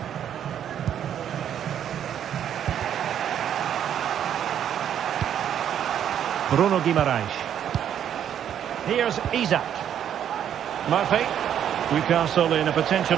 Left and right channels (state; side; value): quieter; left; 9.6 dB